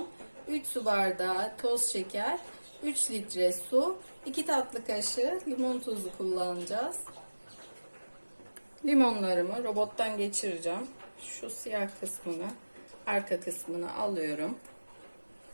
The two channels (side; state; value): both; inverted; correlation -1.00